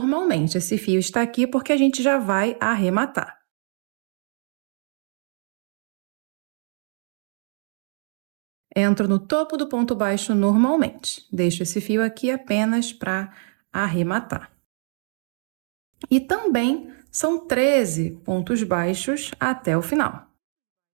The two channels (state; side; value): silent; left; digital silence